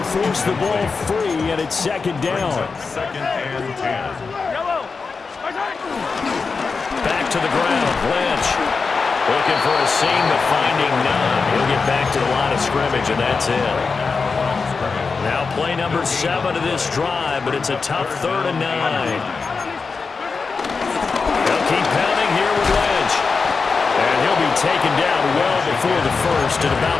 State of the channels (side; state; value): right; quieter; 4.7 dB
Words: forced the ball free, and it's 2nd down. 2nd and 10. Back to the ground, Lynch. Looking for a seam, but finding none. He'll get back to the line of scrimmage, and that's it. Now play number 7 of this drive, but it's a tough 3rd and 9. They'll keep pounding here with Lynch. And he'll be taken down well before the 1st at about